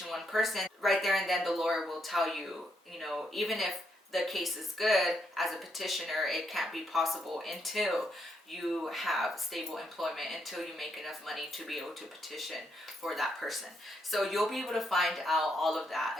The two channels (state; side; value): normal; both; correlation 0.77